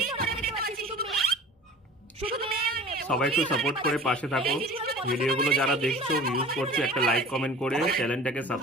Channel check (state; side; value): normal; both; correlation 0.42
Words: সবাই একটু সাপোর্ট করে পাশে থাকো। ভিডিওগুলো যারা দেখছো, ইউজ করছো, একটা লাইক কমেন্ট করে চ্যানেলটাকে